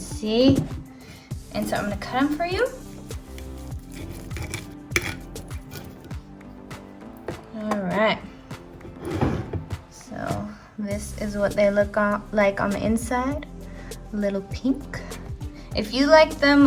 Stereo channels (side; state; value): both; identical; correlation 1.00